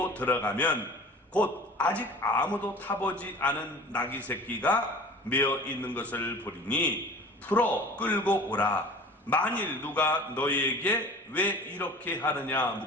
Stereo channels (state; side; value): normal; both; correlation 0.41